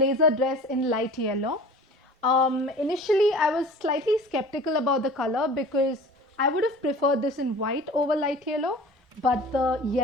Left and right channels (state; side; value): normal; both; correlation 0.42